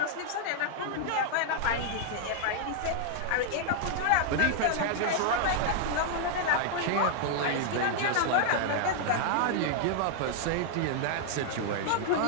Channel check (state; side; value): different; both; correlation -0.01